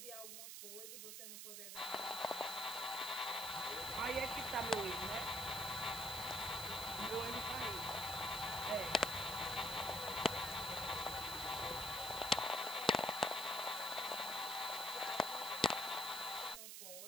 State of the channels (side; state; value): right; noise; hiss, 8 dB below the sound